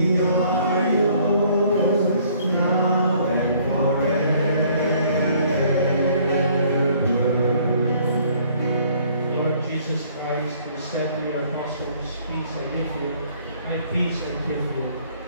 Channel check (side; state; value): both; inverted; correlation -0.60